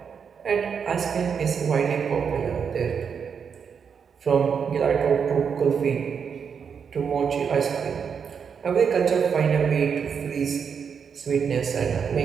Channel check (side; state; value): left; quieter; 6.7 dB